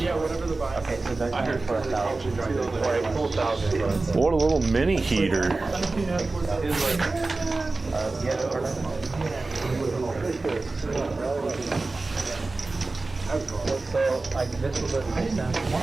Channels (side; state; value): left; quieter; 3.4 dB